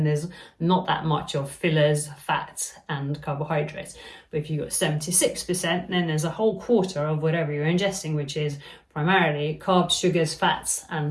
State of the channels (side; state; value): both; identical; correlation 1.00